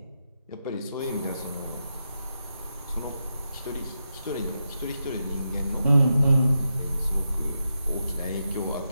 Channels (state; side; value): inverted; both; correlation -0.87